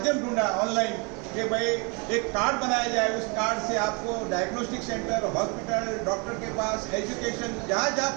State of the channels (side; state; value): left; quieter; 32.2 dB